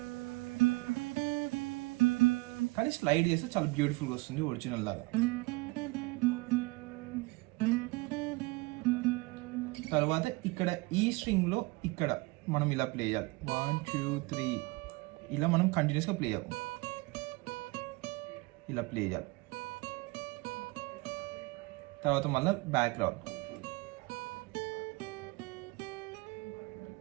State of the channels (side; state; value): left; quieter; 23.8 dB